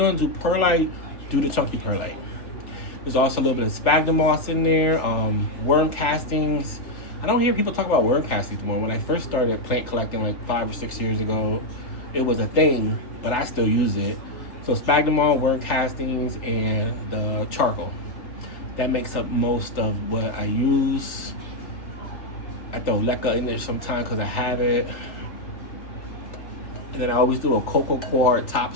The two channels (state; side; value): late; right; 3.3 ms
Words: do perlite, do the chunky perlite. There's also a little bit of sphagnum moss in there, worm castings. I don't hear people talk about worm castings more. When I first started plant collecting like 5 or 6 years ago, it was a thing, but I still use it. So sphagnum moss, worm castings, and the charcoal. That makes up most of what I use. I throw leca in there sometimes because I have it. And then I always do a cocoa coir